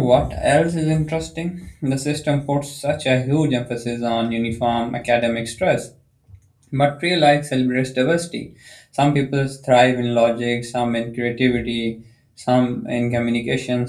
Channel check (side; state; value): both; identical; correlation 1.00